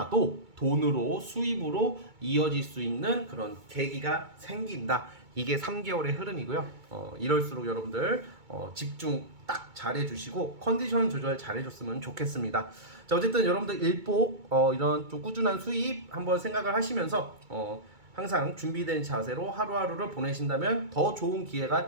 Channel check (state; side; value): late; left; 2.2 ms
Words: 돈으로 수입으로 이어질 수 있는 그런 계기가 생긴다. 이게 3개월의 흐름이고요. 이럴수록 여러분들 집중 딱 잘해주시고 컨디션 조절 잘해줬으면 좋겠습니다. 자 어쨌든 여러분들 일복 이런 좀 꾸준한 수입 한번 생각을 하시면서 항상 준비된 자세로 하루하루를 보내신다면 더 좋은